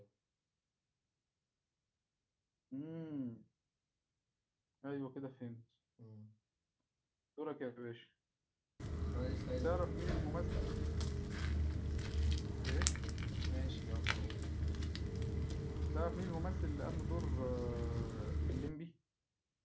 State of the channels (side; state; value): both; identical; correlation 1.00